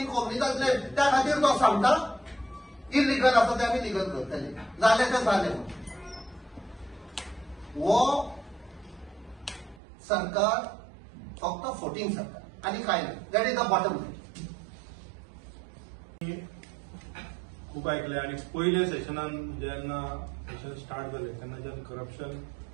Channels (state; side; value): drops out; left; at 9.8 s